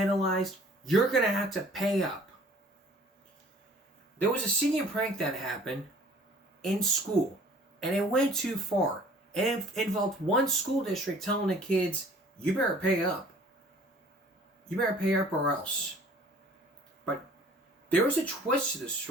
You're going to have to pay up. There was a senior prank that happened in school, and it went too far. And it involved one school district telling the kids, you better pay up. You better pay up or else. But there was a twist to this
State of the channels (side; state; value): both; normal; correlation 0.52